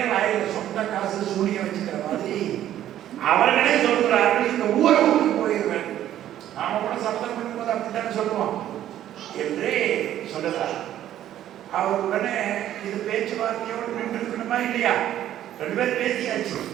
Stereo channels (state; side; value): quieter; left; 12.0 dB